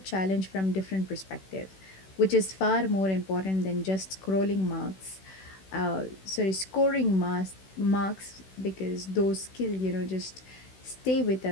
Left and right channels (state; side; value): late; right; 16 ms